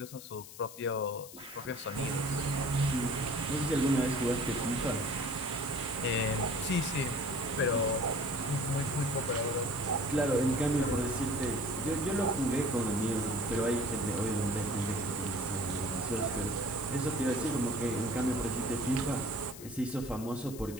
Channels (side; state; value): left; noise; hiss, 15 dB below the sound